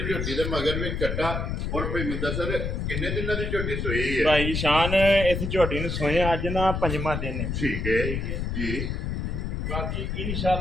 ਝੋਟੀ ਦੇ ਮਗਰ ਵੀ ਕੱਟਾ ਔਰ ਭਈ ਮੁਦੱਸਰ ਕਿੰਨੇ ਦਿਨਾਂ ਦੀ ਝੋਟੀ ਸੋਈ ਹੈ ਭਾਈ ਸ਼ਾਨ ਇਸ ਝੋਟੀ ਨੂੰ ਸੋਏ ਅੱਜ ਨਾ 5ਵਾਂ ਦਿਨ ਹੈ ਠੀਕ ਹੈ ਜੀ ਬਾਕੀ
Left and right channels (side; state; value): left; noise; rumble, 2 dB below the sound